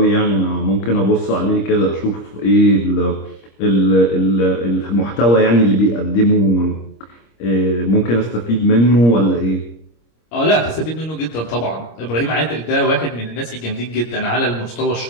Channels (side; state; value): right; late; 26 ms